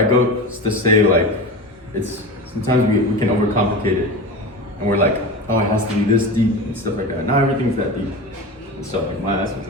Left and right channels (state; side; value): normal; both; correlation 0.28